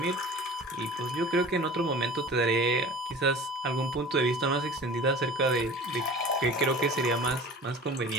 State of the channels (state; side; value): normal; both; correlation 0.41